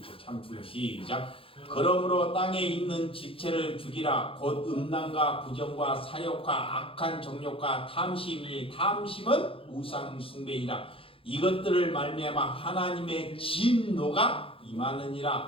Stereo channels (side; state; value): right; late; 0.27 ms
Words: 참 중요. 시작. 그러므로 땅에 있는 집체를 죽이라. 곧 음란과 부정과 사욕과 악한 정욕과 탐심이, 탐심은 우상 숭배이라. 이것들을 말미암아 하나님의 진노가